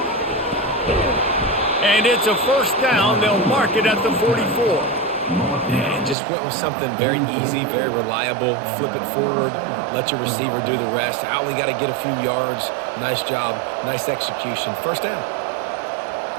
And it's a 1st down. They'll mark it at the 44. And just went with something very easy, very reliable. Flip it forward, let your receiver do the rest. I only got to get a few yards. Nice job, nice execution. 1st down.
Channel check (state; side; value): drops out; left; at 6.2 s